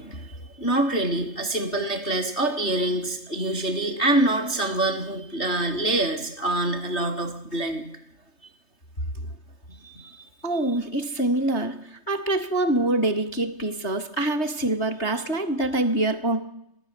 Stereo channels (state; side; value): late; right; 3.3 ms